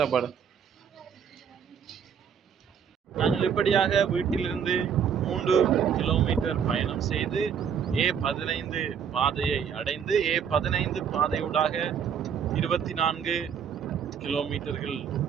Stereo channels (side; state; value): left; quieter; 7.5 dB